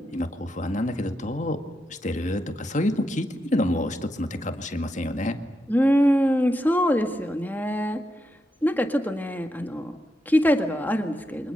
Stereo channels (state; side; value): normal; both; correlation 0.85